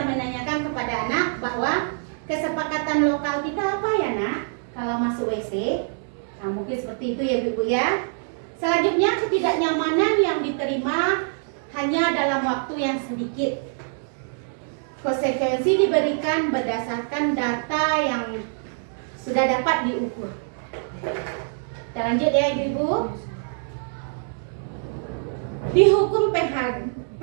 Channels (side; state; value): left; silent; 62 dB below the other